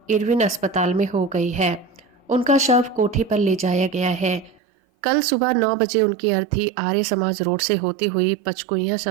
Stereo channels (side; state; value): left; drops out; at 4.6 s